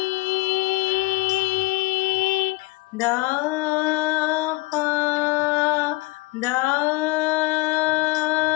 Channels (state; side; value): quieter; right; 23.3 dB